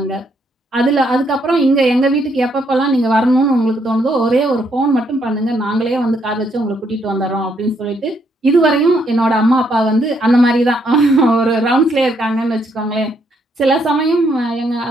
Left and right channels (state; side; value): normal; both; correlation 0.73